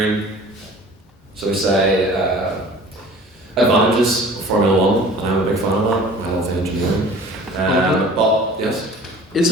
so we say, advantages of Formula 1, and I'm a big fan of that. I love the engineering. But, yes? Is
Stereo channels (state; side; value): normal; both; correlation 0.45